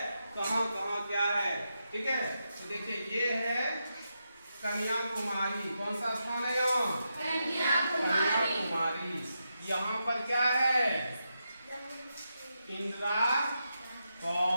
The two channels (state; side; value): inverted; both; correlation -0.86